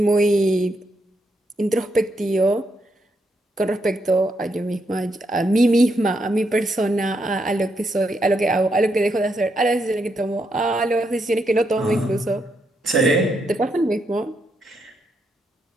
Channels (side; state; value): both; normal; correlation 0.80